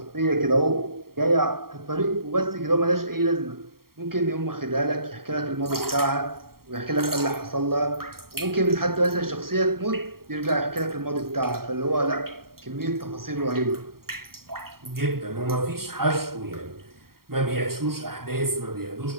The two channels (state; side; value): late; left; 0.93 ms